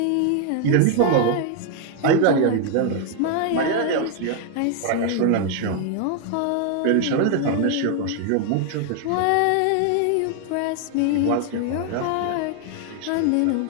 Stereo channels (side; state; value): both; different; correlation 0.00